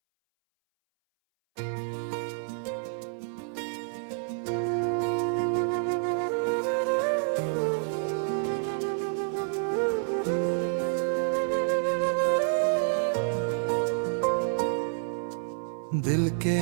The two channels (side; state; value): left; silent; 59 dB below the other